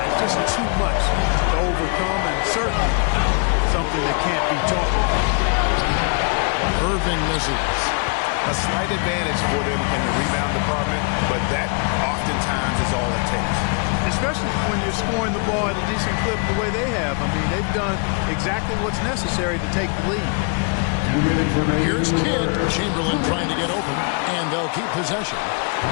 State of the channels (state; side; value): quieter; right; 38.6 dB